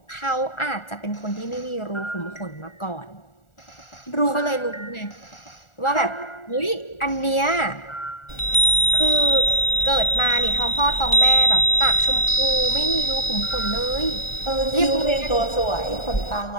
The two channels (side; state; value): right; late; 1.4 ms